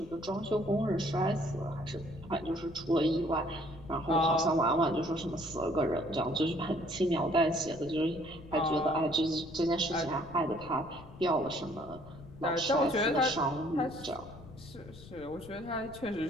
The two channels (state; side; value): noise; left; rumble, 18 dB below the sound